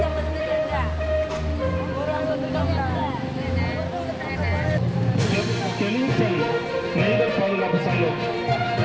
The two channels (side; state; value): both; identical; correlation 1.00